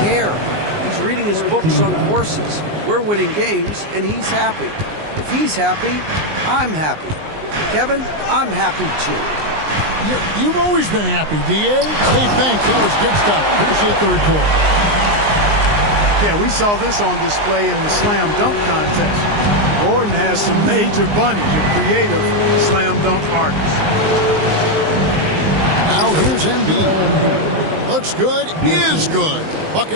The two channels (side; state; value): left; late; 19 ms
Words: He's reading his books on horses. We're winning games, and he's happy. If he's happy, I'm happy. Kevin, I'm happy too. You've always been happy, D.A. Hey, thanks. That was good stuff. Appreciate the report. Yeah, we saw this on display in the slam dunk contest. Gordon has some major bunnies, a creative slam dunk artist. Now here's Embiid. Looks good, is good.